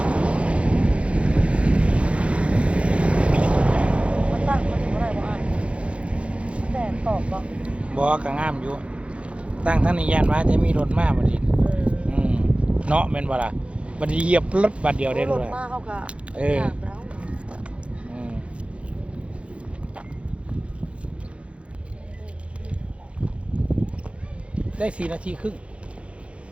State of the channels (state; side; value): late; left; 0.061 ms